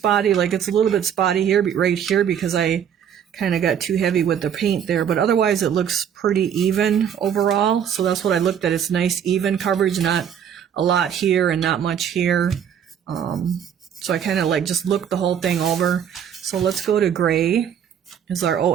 Like it's a little bit spotty here, right here, because I kind of got too heavy with the paint there, but otherwise it looks pretty even overall. So that's what I looked at. It's nice even coverage, not a lot here and not much here. So I kind of like just look the whole thing over. So let's go to gray. Is our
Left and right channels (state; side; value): quieter; left; 8.6 dB